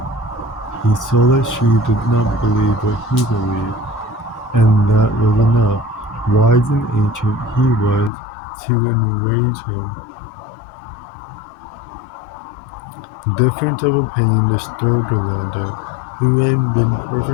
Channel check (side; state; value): right; drops out; at 8.1 s